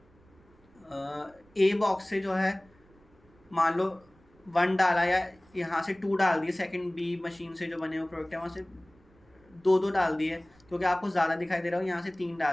ए बॉक्स से जो है मान लो 1 डाला या यहाँ से 2 डाल दिए, सेकंड बी मशीन से जो बने हुए प्रोडक्ट है वहाँ से 2 डाल दिए क्योंकि आपको ज़्यादा दिखाई दे रहा हो, यहाँ से 3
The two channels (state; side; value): noise; right; rumble, 30 dB below the sound